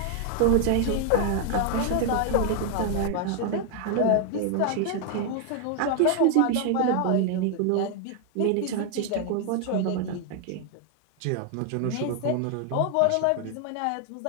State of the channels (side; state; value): both; different; correlation 0.00